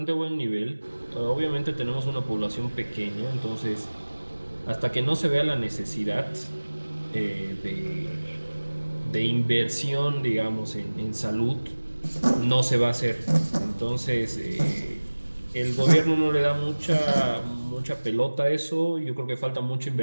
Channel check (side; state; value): both; inverted; correlation -1.00